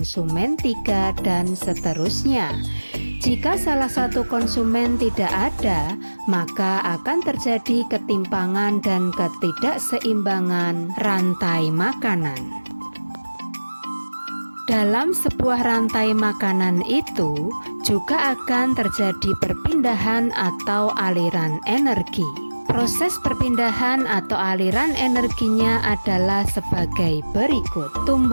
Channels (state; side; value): inverted; both; correlation -1.00